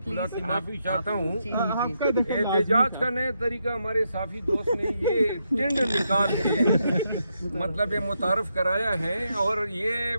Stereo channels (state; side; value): inverted; both; correlation -0.81